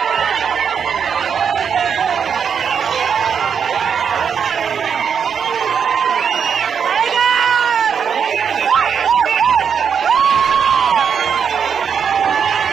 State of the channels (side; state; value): left; quieter; 7.1 dB